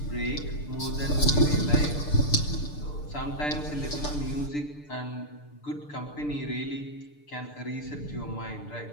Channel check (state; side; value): late; right; 6.8 ms